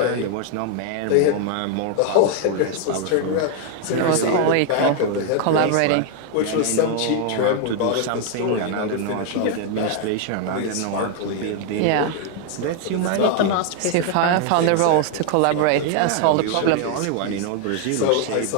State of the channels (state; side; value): different; both; correlation 0.00